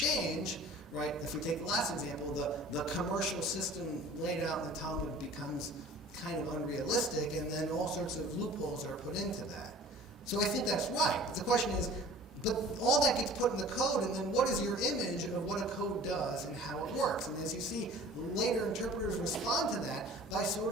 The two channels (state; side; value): normal; both; correlation 0.45